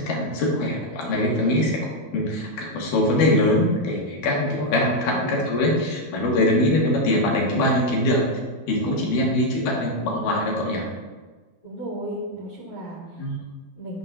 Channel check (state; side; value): late; right; 12 ms